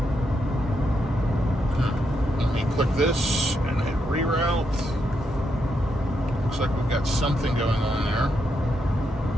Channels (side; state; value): both; normal; correlation 0.81